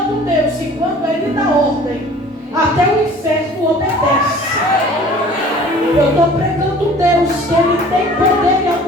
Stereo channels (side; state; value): both; normal; correlation 0.48